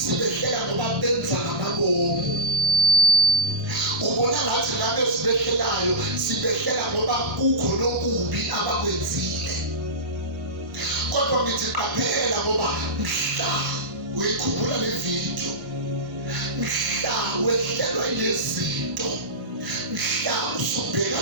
ngoba benza ngamabomu. Ubona ngathi laba esibehlelayo sibehlela ngoba kukho nokubi abakwenzile. Kodwa ngithi qaphela ngoba mhla uyikhumbula le video, mhla wehlelwa ilezinto, mhla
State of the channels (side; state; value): left; late; 1.0 ms